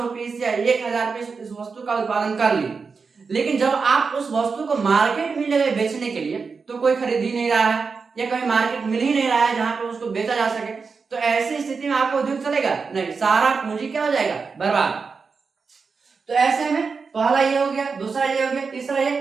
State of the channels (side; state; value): left; quieter; 5.0 dB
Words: पीस या 1000 पीस इस वस्तु का उत्पादन कर लिए, लेकिन जब आप उस वस्तु को मार्केट में ले गए बेचने के लिए तो कोई खरीद ही नहीं रहा है या कहीं मार्केट मिल ही नहीं रहा है जहां पे उसको बेचा जा सके, तो ऐसी स्थिति में आपका उद्योग चलेगा? नहीं, सारा पूंजी क्या हो जाएगा? बर्बाद। तो ऐसे में पहला ये हो गया, दूसरा ये हो गया, तीसरा ये,